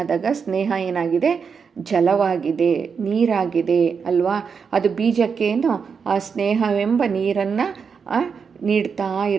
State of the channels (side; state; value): left; quieter; 6.0 dB